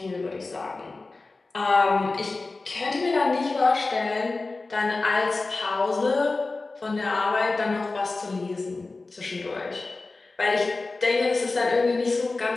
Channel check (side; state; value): right; quieter; 3.5 dB